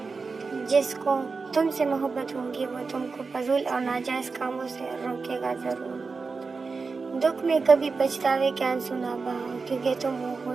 جس کو تم سے محبت ہوگی وہ تم کو فضول اور ناجائز کاموں سے روکے گا ضرور۔ دکھ میں کبھی پچھتاوے کے آنسو نہ بہاؤ، کیونکہ تم وہ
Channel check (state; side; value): quieter; left; 4.5 dB